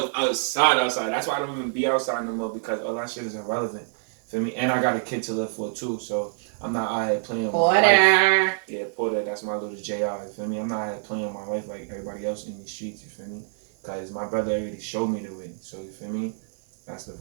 outside. That's why I don't even be outside no more, because all that shit is irrelevant. Feel me? And I got a kid to live for too, so I'm not out here playing with my life. Yeah, Porter, that's my little JR, you feel me? I'm not out here playing with my life like everybody else in these streets, you feel me? Because my brother already showed me the way, so you feel me? That's the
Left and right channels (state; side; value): silent; left; 61 dB below the other